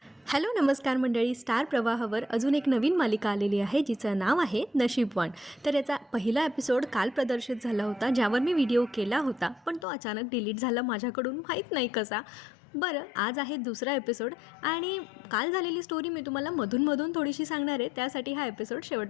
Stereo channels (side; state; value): right; drops out; at 9.9 s